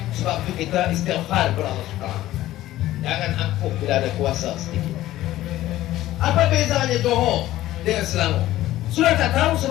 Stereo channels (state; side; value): quieter; right; 14.9 dB